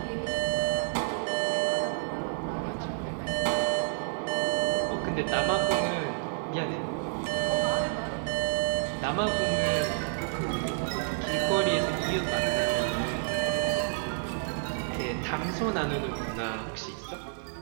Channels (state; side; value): silent; left; 58 dB below the other